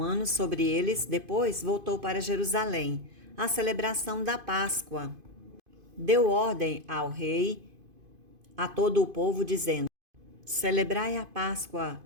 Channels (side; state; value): left; late; 2.5 ms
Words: sobre eles. Depois voltou para Jerusalém, a celebração da Páscoa. Deu ordem ao rei, a todo o povo, dizendo: celebrai a Páscoa